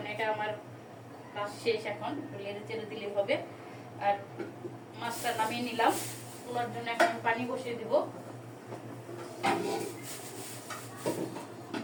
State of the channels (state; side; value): identical; both; correlation 1.00